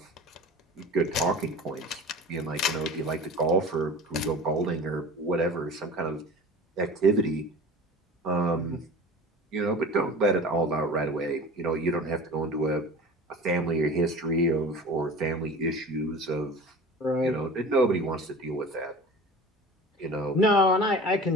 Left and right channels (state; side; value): normal; both; correlation 0.37